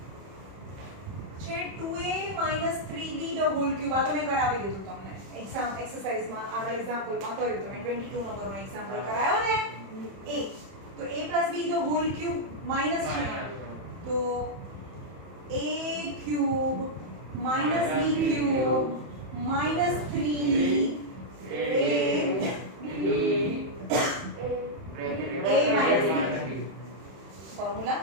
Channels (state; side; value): late; left; 31 ms